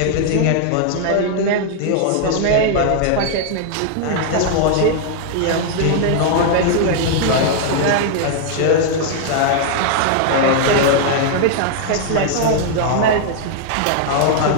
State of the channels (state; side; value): different; both; correlation 0.00